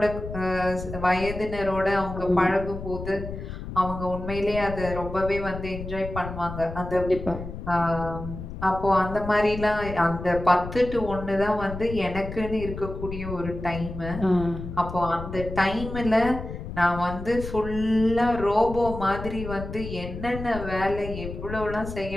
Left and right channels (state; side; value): noise; left; rumble, 9 dB below the sound